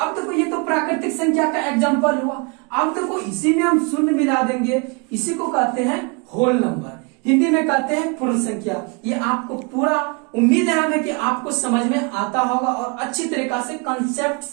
अब देखो ये तो प्राकृतिक संख्या का एग्जाम्पल हुआ। अब देखो इसी में हम शून्य मिला देंगे, इसी को कहते हैं होल नंबर, हिंदी में कहते हैं पूर्ण संख्या। ये आपको पूरा उम्मीद है हमें कि आपको समझ में आता होगा और अच्छी तरीका से कंसेप्ट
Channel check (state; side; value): quieter; left; 31.8 dB